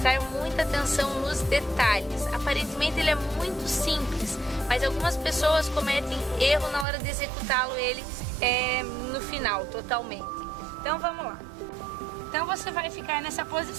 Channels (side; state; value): left; drops out; at 6.9 s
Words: muita atenção nos detalhes. Aparentemente ele é muito simples, mas algumas pessoas cometem erro na hora de executá-lo no final, totalmente. Então vamos lá. Então você vai ficar nessa